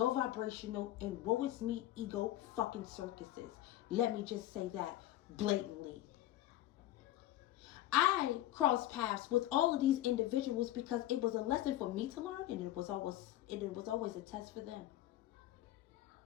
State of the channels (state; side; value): quieter; right; 14.4 dB